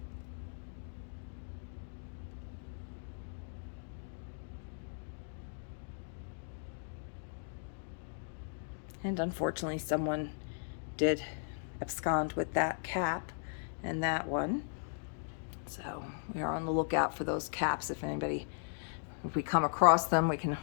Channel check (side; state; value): right; silent; digital silence